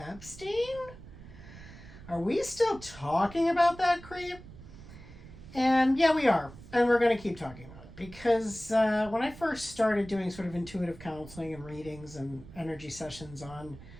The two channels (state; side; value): noise; right; rumble, 17 dB below the sound